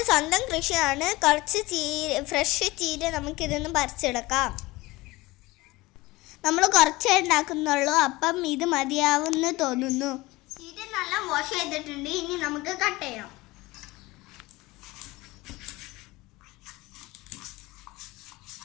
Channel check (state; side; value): quieter; right; 20.9 dB